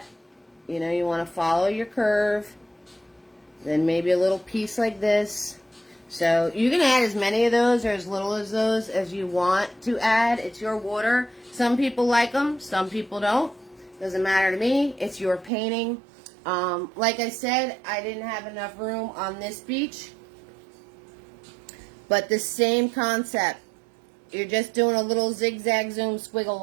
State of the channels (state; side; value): drops out; left; at 15.5 s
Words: You know, you want to follow your curve. Then maybe a little piece like this. So you can add as many of those or as little as those as you want to add. It's your water. Some people like them, some people don't. Doesn't matter to me. It's your painting. Like I said, I didn't have enough room on this beach. But the same concept. You're just doing a little zigzag zoom squiggle